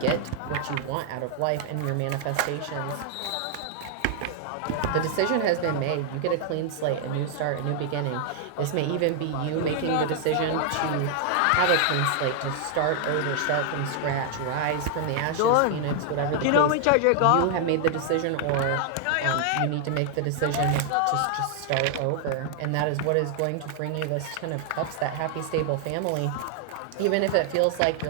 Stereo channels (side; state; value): both; different; correlation 0.00